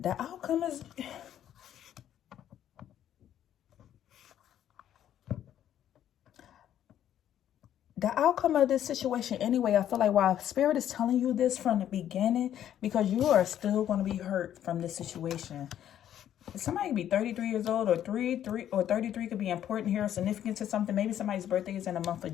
outcome is... the outcome of this situation anyway, I feel like while Spirit is telling you this from the beginning, because you are still going to be hurt from this situation. Somebody could be 33 years old, or 33 could be important here, or significant to something. Maybe somebody's birthday is in the month of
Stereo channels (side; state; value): right; quieter; 10.8 dB